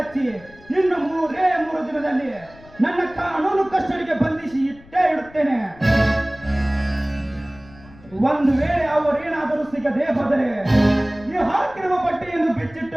ಇನ್ನು 3 ದಿನದಲ್ಲಿ ನನ್ನ ಕಾನೂನು ಕಸ್ಟಡಿಗೆ ಬಂಧಿಸಿ ಇಟ್ಟೇ ಇಡುತ್ತೇನೆ. ಒಂದು ವೇಳೆ ಅವರೇನಾದರೂ ಸಿಗದೆ ಹೋದರೆ ಈ ಹಾಕಿರುವ ಬಟ್ಟೆಯನ್ನು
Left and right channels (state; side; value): noise; left; rumble, 23 dB below the sound